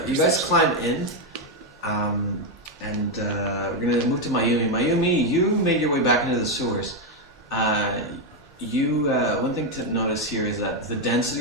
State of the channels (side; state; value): both; normal; correlation 0.04